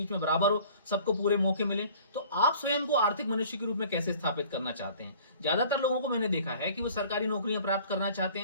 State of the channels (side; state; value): both; inverted; correlation -0.49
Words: में बराबर हो, सबको पूरे मौके मिले। तो आप स्वयं को आर्थिक मनुष्य के रूप में कैसे स्थापित करना चाहते हैं? ज्यादातर लोगों को मैंने देखा है कि वो सरकारी नौकरियां प्राप्त करना चाहते